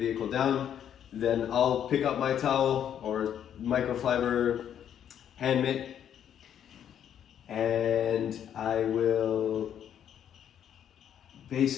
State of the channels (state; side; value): quieter; right; 9.5 dB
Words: down, then I'll pick up my towel or microfiber hand mitt, and I will